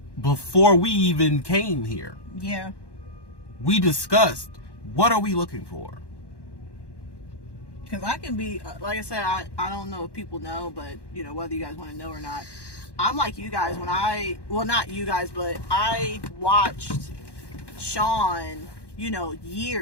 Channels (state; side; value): late; right; 1.1 ms